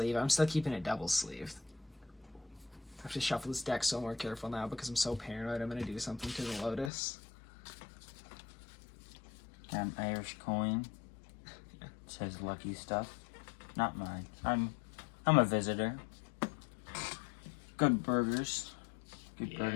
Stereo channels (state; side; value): drops out; right; at 6.9 s